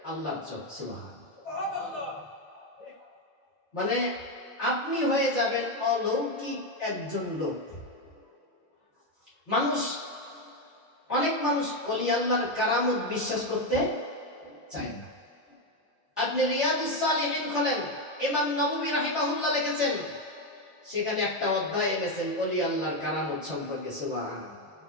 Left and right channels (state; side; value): normal; both; correlation 0.07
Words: আল্লাহর চোখ। সুবহানাল্লাহ। মানে আপনি হয়ে যাবেন অলৌকিক একজন লোক। অনেক মানুষ ওলি আল্লাহর কারামত বিশ্বাস করতে চায় না। আপনি রিয়াদুস সালিহিন খোলেন, ইমাম নববী রাহিমাহুল্লাহ লিখেছেন, সেখানে একটা অধ্যায় এনেছেন ওলি আল্লাহর কারামত সম্পর্কে। সুবহানাল্লাহ।